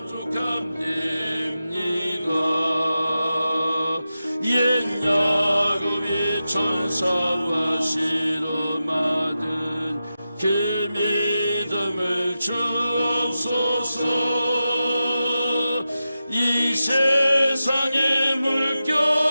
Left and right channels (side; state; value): both; inverted; correlation -0.92